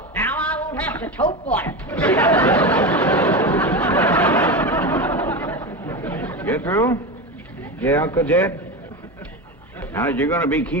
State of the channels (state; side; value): normal; both; correlation 0.21